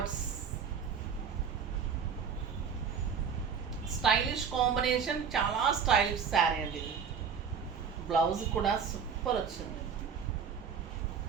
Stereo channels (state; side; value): quieter; left; 6.7 dB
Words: స్టైలిష్ కాంబినేషన్, చాలా స్టైలిష్ శారీ అండి ఇది. బ్లౌజ్ కూడా సూపర్ వచ్చింది.